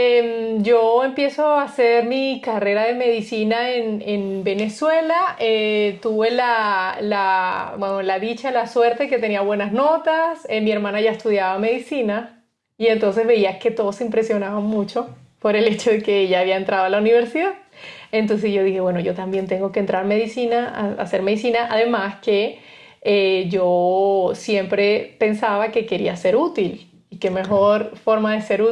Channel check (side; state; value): both; identical; correlation 1.00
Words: yo empiezo a hacer mi carrera de medicina en Venezuela. Tuve bueno, la dicha, la suerte que tenía buenas notas. Mi hermana ya estudiaba medicina y entonces veía que todos se impresionaban mucho por el hecho de que ella había entrado a la universidad. Entonces yo dije, bueno, yo también tengo que entrar a medicina, a hacer medicina. Además que yo siempre pensaba que quería ser útil. Y qué Ok. mejor forma de ser